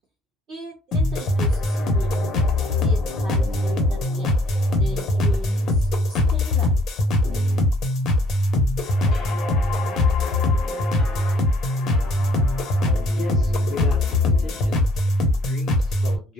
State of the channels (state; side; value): normal; both; correlation 0.62